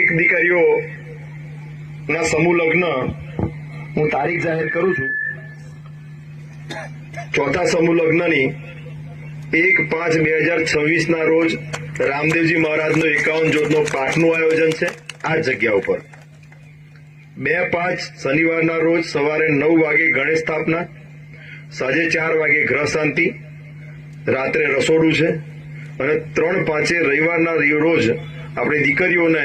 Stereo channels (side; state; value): both; identical; correlation 1.00